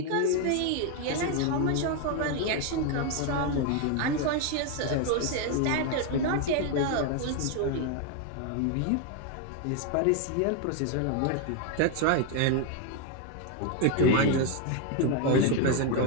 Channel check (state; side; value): different; both; correlation 0.01